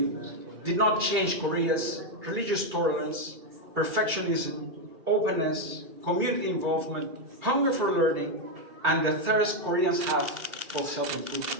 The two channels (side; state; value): left; late; 1.9 ms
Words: did not change Korea's religious tolerance, perfectionism, openness, community involvement, hunger for learning, and the thirst Koreans have for